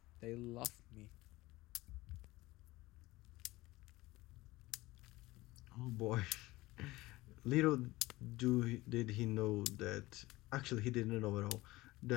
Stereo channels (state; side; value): quieter; right; 19.3 dB